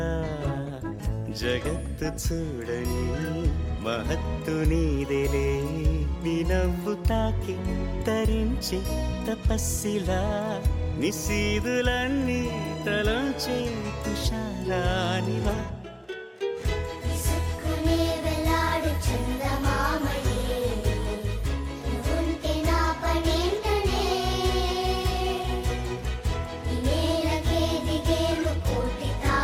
జగత్తు చూడని మహత్తు నీదేలే నీ నవ్వు తాకి తరించి తపస్సిలా నిశీదులన్నీ తలంచే తుషారానివా విసుక్కునే వెలాడు చందమామయే నువ్వుంటే నా పనేంటనే ఈ నేలకే దిగేను కోటి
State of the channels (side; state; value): both; identical; correlation 1.00